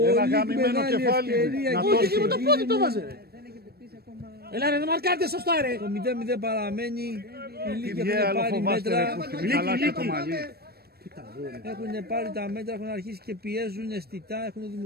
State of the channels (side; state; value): left; late; 0.46 ms